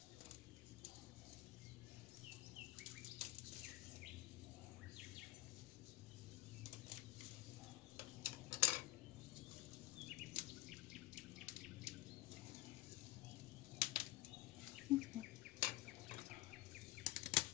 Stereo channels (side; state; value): right; quieter; 17.2 dB